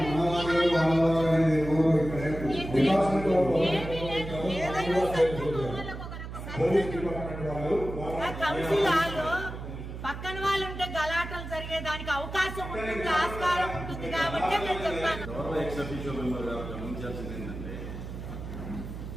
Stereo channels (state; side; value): noise; right; hum, 9 dB below the sound